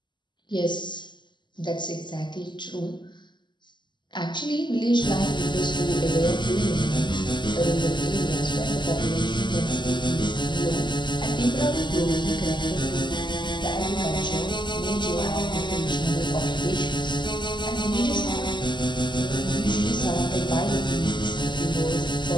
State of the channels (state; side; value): late; right; 0.22 ms